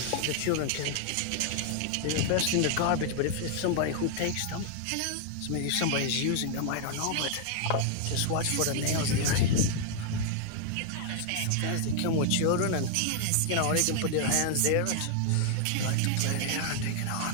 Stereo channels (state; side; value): different; both; correlation 0.00